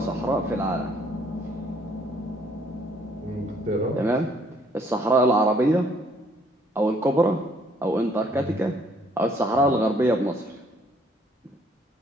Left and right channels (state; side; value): normal; both; correlation 0.64